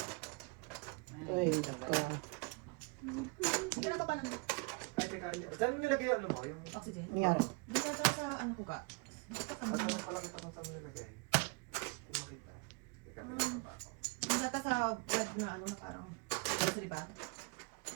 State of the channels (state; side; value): quieter; left; 30.1 dB